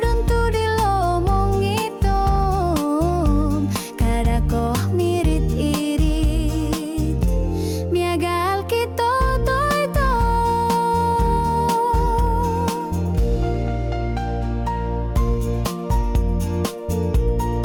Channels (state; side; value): identical; both; correlation 1.00